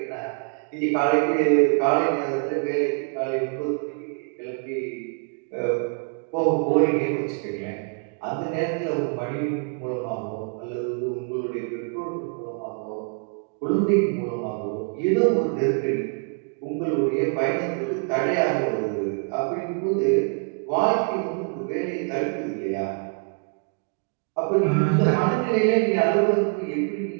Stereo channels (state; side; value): quieter; left; 39.3 dB